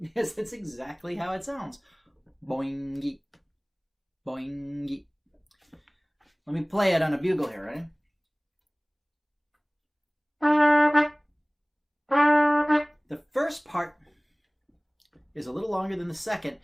that's exactly how it sounds. Boingy. Boingy. Let me play it on a bugle here, right? The first part is a little longer than the second,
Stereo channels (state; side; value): identical; both; correlation 1.00